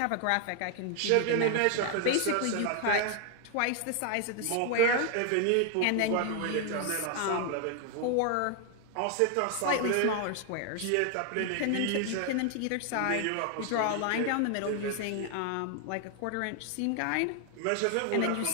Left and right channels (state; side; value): different; both; correlation 0.00